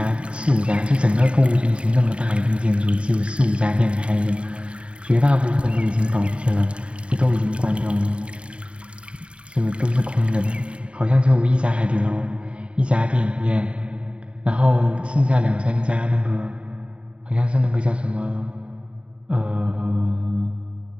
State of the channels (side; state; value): left; late; 0.058 ms